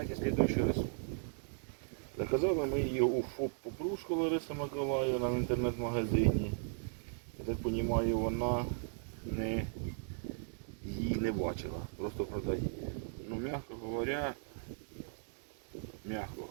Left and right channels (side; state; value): left; silent; digital silence